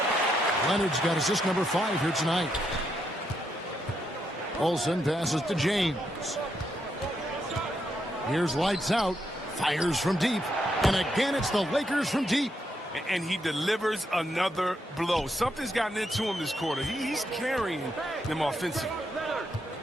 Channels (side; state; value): both; normal; correlation 0.79